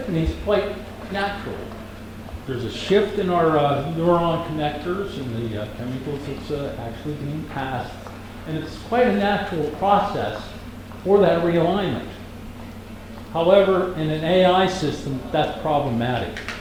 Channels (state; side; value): identical; both; correlation 1.00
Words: quite naturally. There's a shift in our neuron connectors and the chemicals that's actually being passed. And it's quite a natural process for that realignment. However, in an AI system, that's problematic.